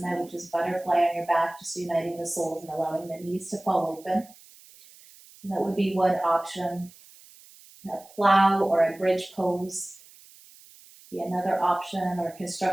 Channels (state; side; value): noise; right; hiss, 23 dB below the sound